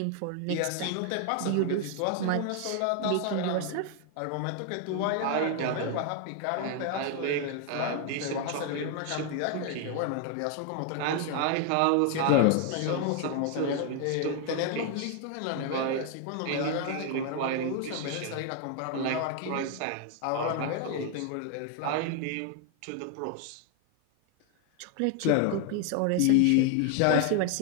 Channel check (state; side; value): different; both; correlation 0.00